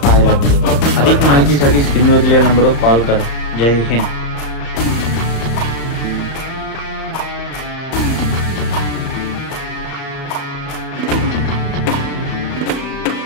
पाहायला मिळेल। अधिक माहितीसाठी स्क्रीनवर दिलेल्या नंबरवर कॉल करा। जय हिंद।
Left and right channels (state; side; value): late; right; 35 ms